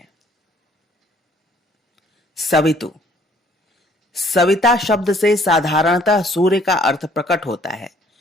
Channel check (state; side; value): normal; both; correlation 0.60